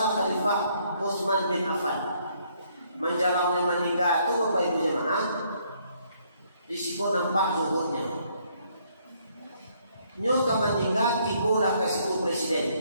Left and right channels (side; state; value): both; inverted; correlation -0.68